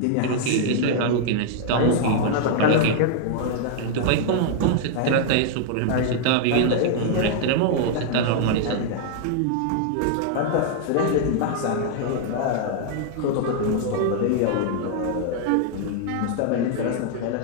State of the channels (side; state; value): both; different; correlation 0.00